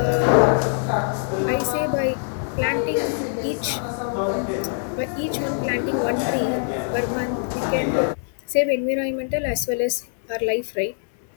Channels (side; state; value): right; silent; 63 dB below the other